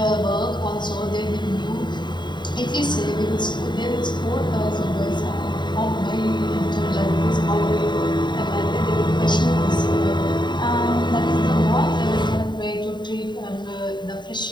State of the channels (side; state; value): right; late; 0.22 ms